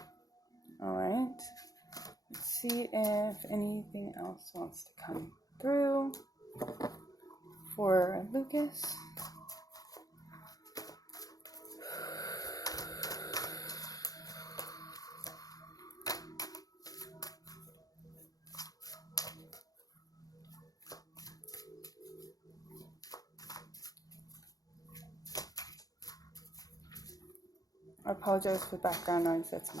All right. Let's see if anything else wants to come through for Lucas. I apologize for background noise. That's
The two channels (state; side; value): late; right; 0.18 ms